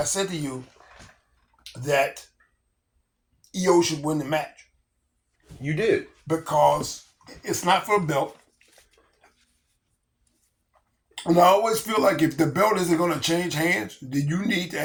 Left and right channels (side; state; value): both; identical; correlation 1.00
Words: that EO should win the match. You did. Because it's not for a belt. And I always feel like if the belt isn't going to change hands, then you need to